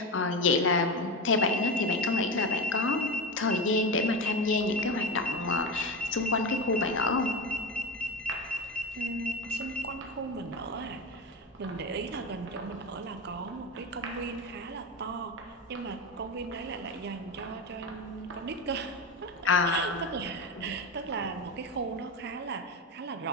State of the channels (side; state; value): both; normal; correlation 0.19